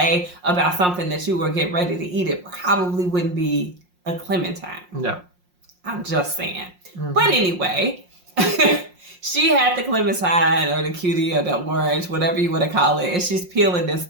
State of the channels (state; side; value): late; left; 5.6 ms